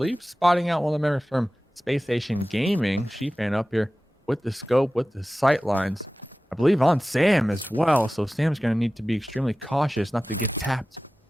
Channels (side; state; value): both; normal; correlation 0.96